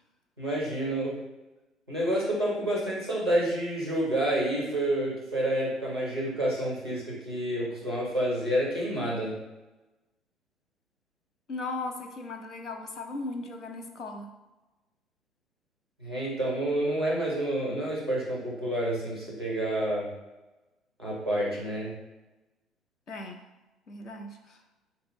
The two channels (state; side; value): normal; both; correlation 0.60